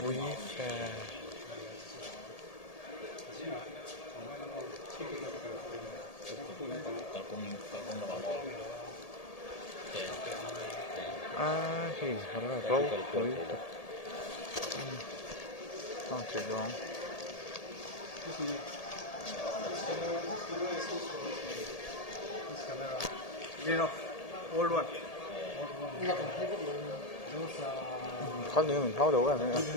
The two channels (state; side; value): late; right; 1.8 ms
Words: fa thì nó là rau với chỉ đó con nữa mình tháo đầu cái này